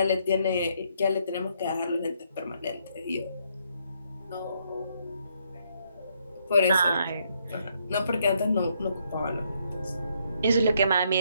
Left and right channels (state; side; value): inverted; both; correlation -0.73